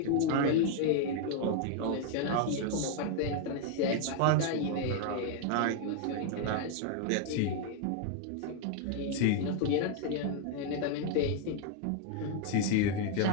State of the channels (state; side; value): different; both; correlation 0.00